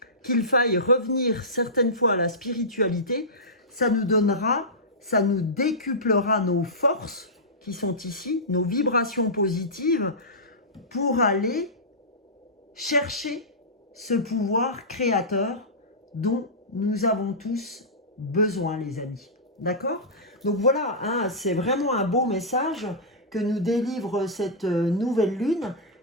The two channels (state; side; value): normal; both; correlation -0.16